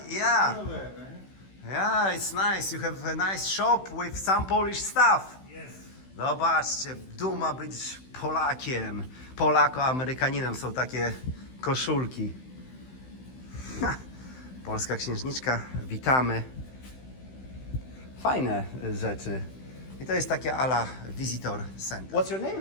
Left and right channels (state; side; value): late; right; 16 ms